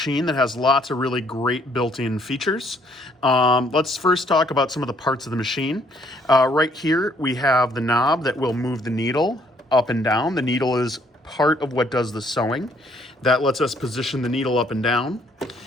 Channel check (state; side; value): normal; both; correlation 0.66